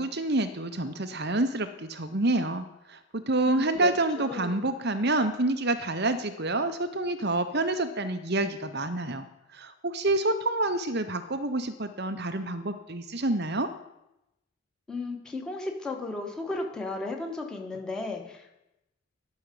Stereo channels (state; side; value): normal; both; correlation 0.13